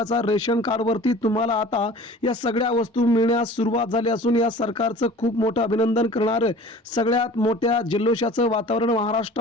रेशन कार्डवरती तुम्हाला आता या सगळ्या वस्तू मिळण्यास सुरुवात झाली असून या सरकारचं खूप मोठं अभिनंदन करणारं सगळ्यात मोठ्या जल्लोषाचं वातावरण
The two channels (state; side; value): normal; both; correlation 0.44